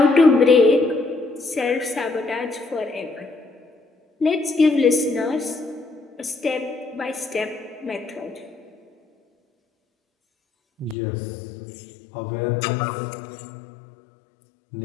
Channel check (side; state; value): right; drops out; at 11.0 s